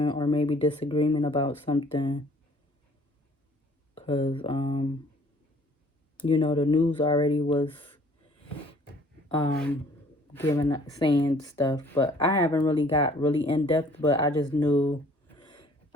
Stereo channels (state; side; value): normal; both; correlation 0.56